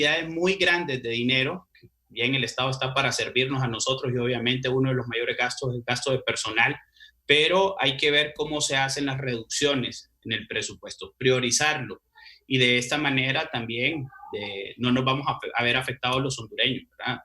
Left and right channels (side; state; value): both; identical; correlation 1.00